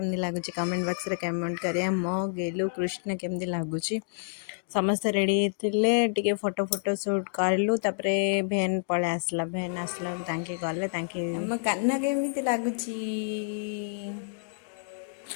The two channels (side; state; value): right; silent; digital silence